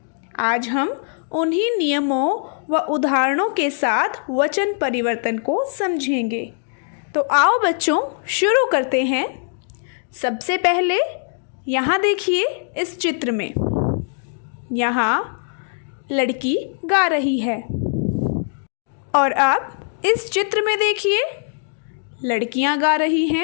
आज हम उन्हीं नियमों व उदाहरणों के साथ वचन परिवर्तन को समझेंगे। तो आओ बच्चों, शुरू करते हैं। सबसे पहले यहाँ देखिए, इस चित्र में यहाँ लड़की गा रही है और अब इस चित्र में देखिए लड़कियाँ गा रही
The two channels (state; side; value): silent; right; digital silence